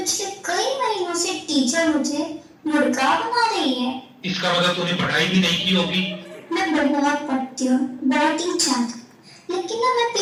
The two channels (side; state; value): both; identical; correlation 1.00